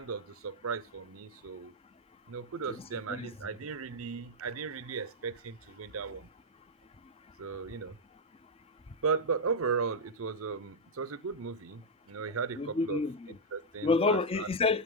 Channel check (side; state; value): both; normal; correlation -0.01